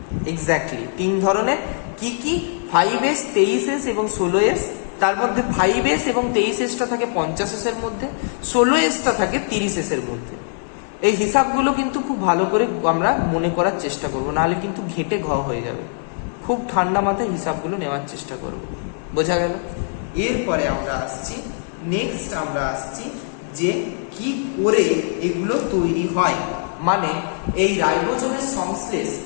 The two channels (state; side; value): silent; right; digital silence